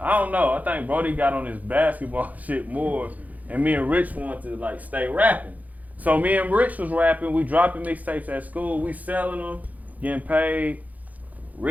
I don't know, I think Brody got on his basketball shit more, and me and Rich wanted to, like, stay rapping. So me and Rich was rapping, we dropping mixtapes at school, we selling them, getting paid.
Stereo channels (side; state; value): left; late; 0.078 ms